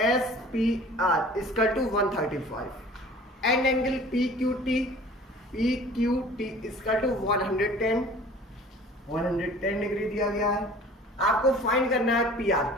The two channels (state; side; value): normal; both; correlation 0.46